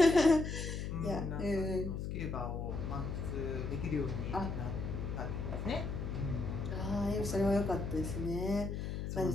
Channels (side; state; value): left; noise; hum, 3 dB below the sound